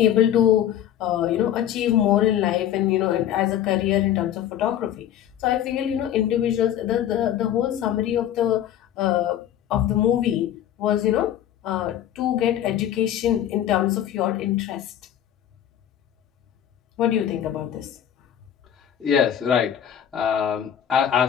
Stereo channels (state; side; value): quieter; right; 10.7 dB